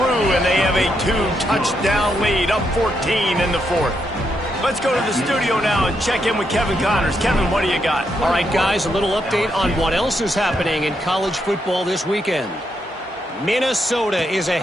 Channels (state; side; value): normal; both; correlation 0.80